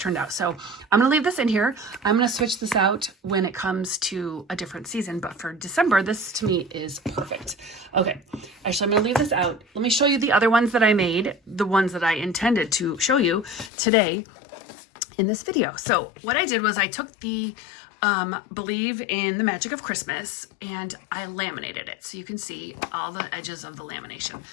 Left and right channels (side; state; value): right; drops out; at 13.7 s